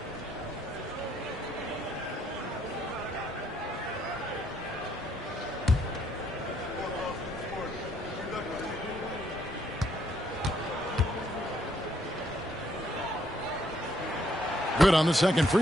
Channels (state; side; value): normal; both; correlation 0.70